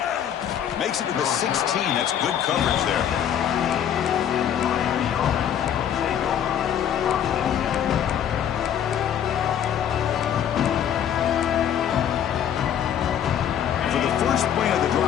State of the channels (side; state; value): right; quieter; 9.5 dB